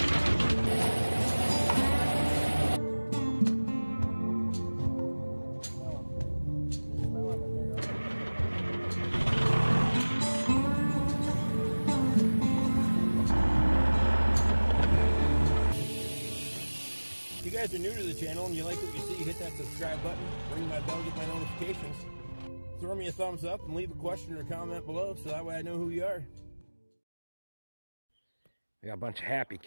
If you guys are new to the channel and you like what you see, hit that subscribe button, ring my bell, get my notifications. Throw me a thumbs up and leave a question or comment below so that way I know who you are. We got a bunch of happy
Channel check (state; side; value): inverted; both; correlation -1.00